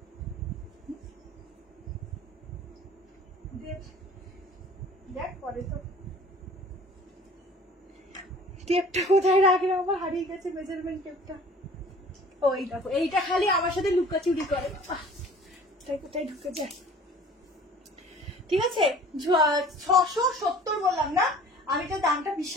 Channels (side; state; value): both; normal; correlation 0.47